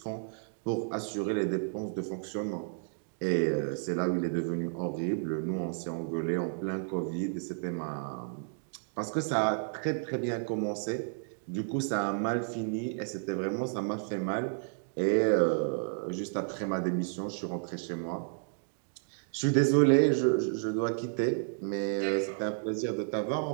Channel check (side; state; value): left; silent; digital silence